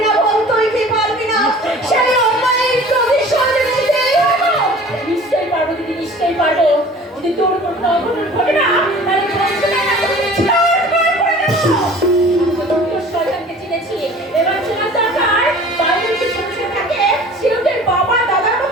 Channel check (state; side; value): normal; both; correlation 0.45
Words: না বোন, তুই কি পারবি না সেই অন্যায়ের প্রতিশোধ নিতে? নিশ্চয়ই পারবো দিদি, নিশ্চয়ই পারবো। যদি তোর কোনো অঘটন ঘটে না, তাহলে তোর শয়তানকে চিনেছি। এবার চেনার দরকার বাইরে যে ছোট থাকে সেওদের বাবা দাদার